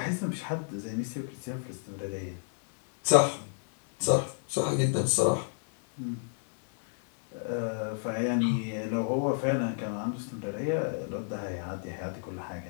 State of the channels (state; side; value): silent; right; digital silence